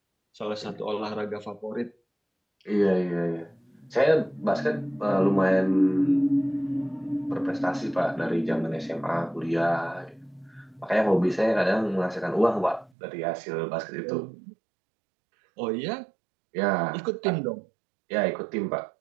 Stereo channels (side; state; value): left; drops out; at 12.9 s